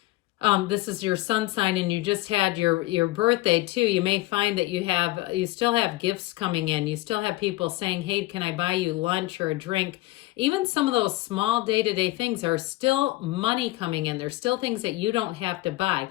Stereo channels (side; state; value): right; quieter; 18.9 dB